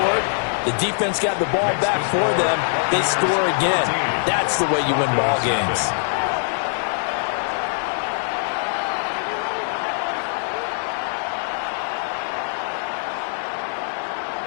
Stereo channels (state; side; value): silent; right; digital silence